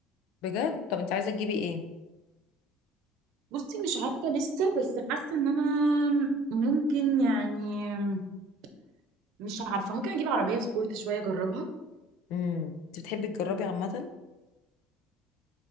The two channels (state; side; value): normal; both; correlation 0.49